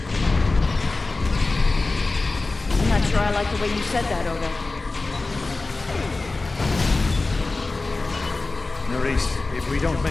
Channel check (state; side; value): quieter; right; 3.4 dB